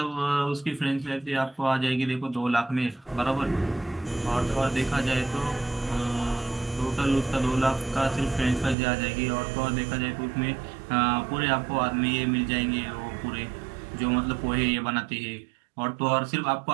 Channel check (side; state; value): left; drops out; at 8.8 s